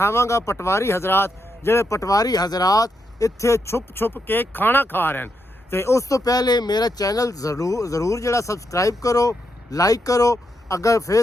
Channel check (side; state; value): both; normal; correlation 0.82